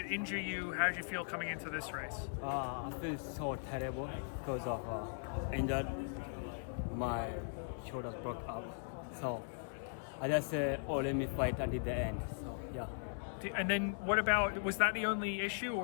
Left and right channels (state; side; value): silent; right; digital silence